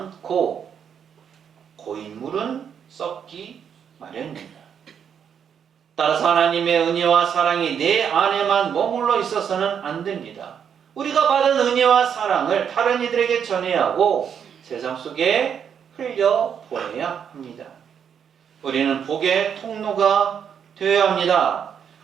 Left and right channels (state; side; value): quieter; left; 7.9 dB